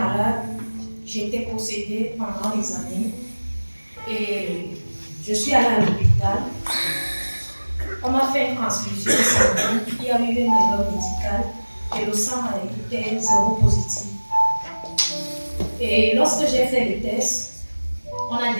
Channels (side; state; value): both; inverted; correlation -1.00